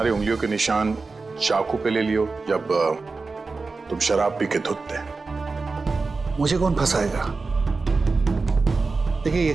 उंगलियों के निशान चाकू पे ले लियो जब तुम शराब पी के धुत थे। मुझे कौन फंसाएगा? देखिए,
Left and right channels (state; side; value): quieter; left; 4.0 dB